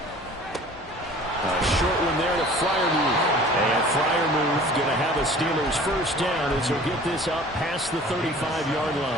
A short one there to Freiermuth. And Freiermuth going to have a Steelers first down as he'll get this up past the 35-yard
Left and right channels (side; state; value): both; normal; correlation 0.47